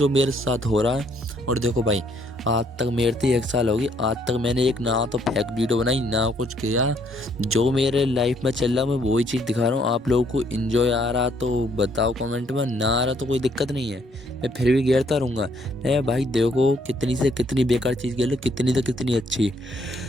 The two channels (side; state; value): both; normal; correlation 0.67